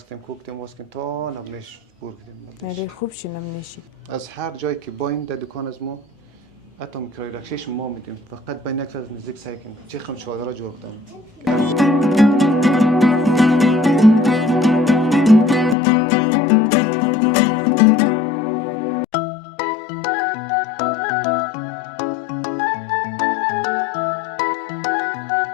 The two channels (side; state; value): right; drops out; at 15.8 s